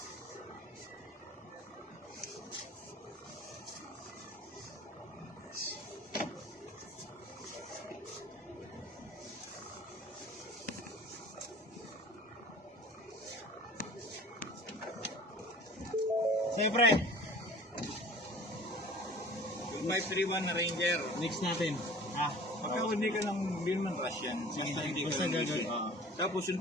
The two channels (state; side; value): normal; both; correlation 0.45